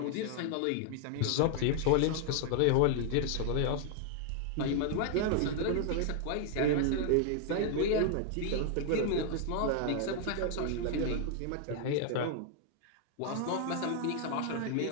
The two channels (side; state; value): both; different; correlation 0.00